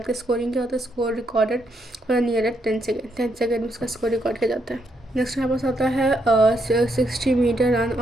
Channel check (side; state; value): both; normal; correlation 0.77